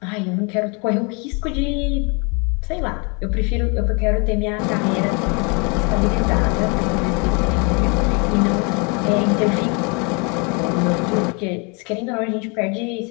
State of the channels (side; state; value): right; quieter; 32.6 dB